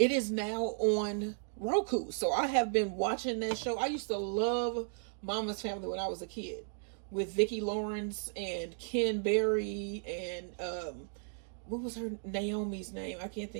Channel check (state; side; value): silent; left; digital silence